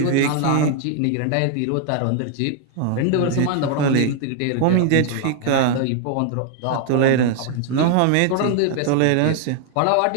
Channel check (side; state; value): both; different; correlation 0.00